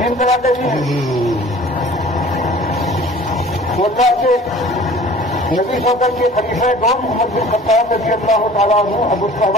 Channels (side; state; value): both; normal; correlation 0.46